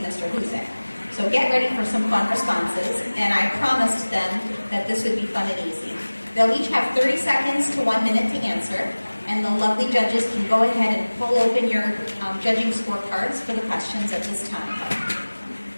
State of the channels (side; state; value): both; inverted; correlation -1.00